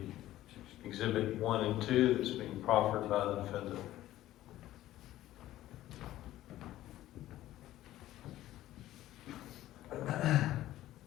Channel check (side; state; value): right; quieter; 14.5 dB